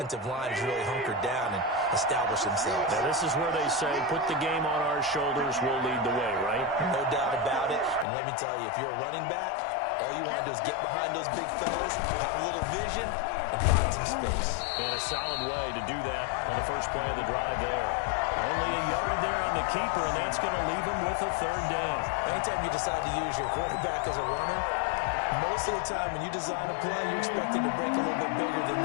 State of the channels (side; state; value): right; drops out; at 8.1 s